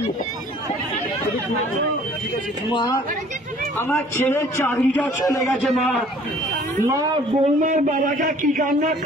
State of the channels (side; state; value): both; normal; correlation 0.54